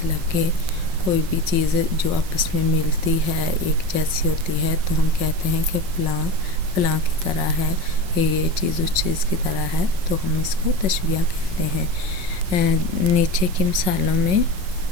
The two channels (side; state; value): left; late; 5.5 ms